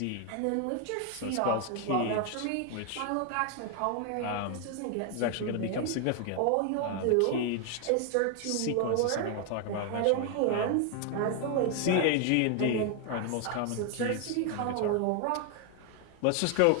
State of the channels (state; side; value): different; both; correlation 0.00